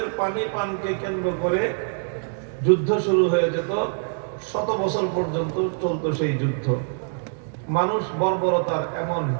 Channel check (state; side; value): silent; left; 62 dB below the other